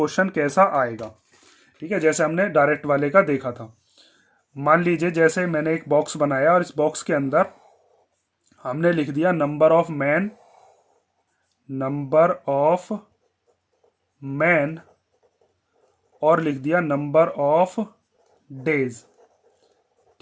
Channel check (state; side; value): identical; both; correlation 1.00